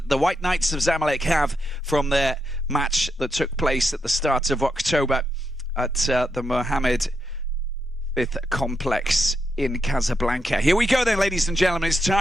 the White Knights of Zamalek have from their match that took place at the start of October at the Mohammed V Complex in Casablanca. Here we go then, ladies and gentlemen. It's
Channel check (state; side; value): normal; both; correlation 0.83